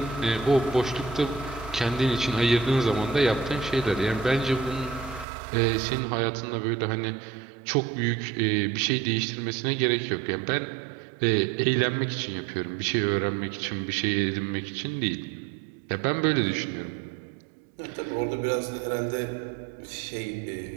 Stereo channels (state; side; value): drops out; left; at 5.2 s